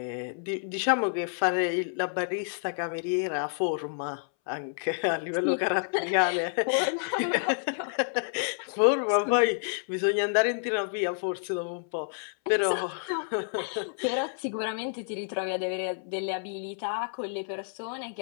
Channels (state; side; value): silent; right; 58 dB below the other